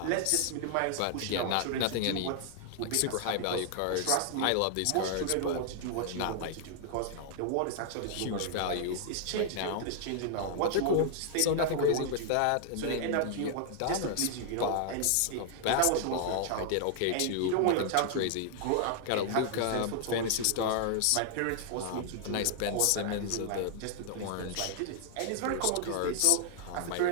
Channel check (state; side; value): different; both; correlation 0.00